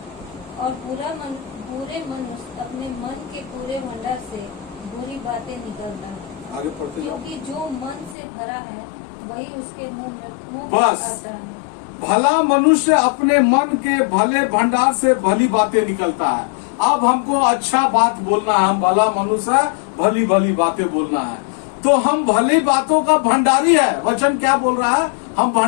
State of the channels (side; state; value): right; drops out; at 8.2 s